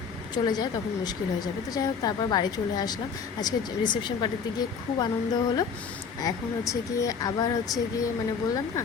চলে যায় তখন মুশকিল হয়ে যাবে। তো যাই হোক, তারপর বাড়ি চলে আসলাম। আজকে রিসেপশন পার্টিতে গিয়ে খুব আনন্দ হলো। এখন হচ্ছে গিয়ে আবার হচ্ছে গিয়ে মানে বললাম না,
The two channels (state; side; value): quieter; right; 6.0 dB